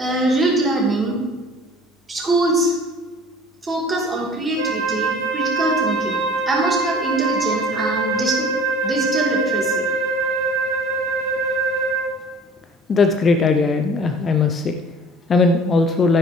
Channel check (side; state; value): both; normal; correlation 0.47